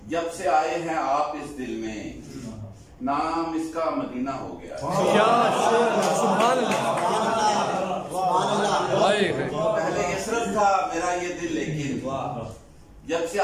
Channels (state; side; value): identical; both; correlation 1.00